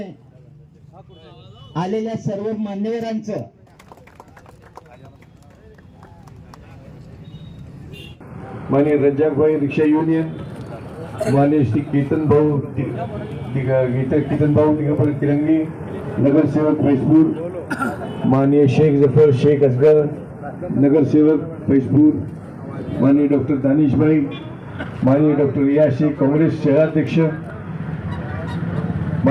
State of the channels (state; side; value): identical; both; correlation 1.00